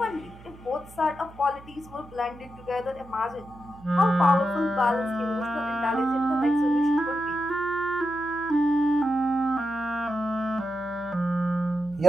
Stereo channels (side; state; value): right; noise; hum, 20 dB below the sound